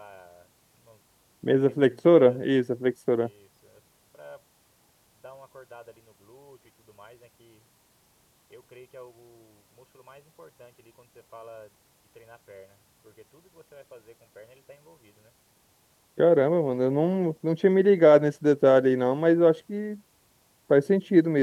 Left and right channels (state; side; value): identical; both; correlation 1.00